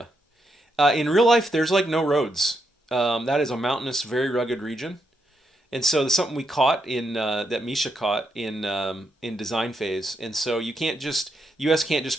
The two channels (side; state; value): both; normal; correlation 0.81